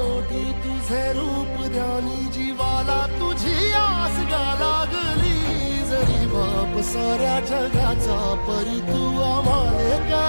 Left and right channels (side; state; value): both; inverted; correlation -1.00